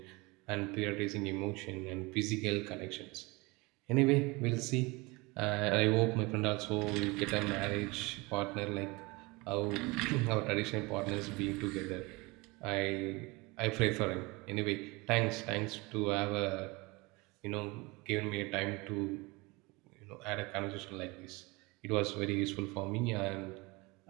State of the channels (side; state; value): left; quieter; 24.8 dB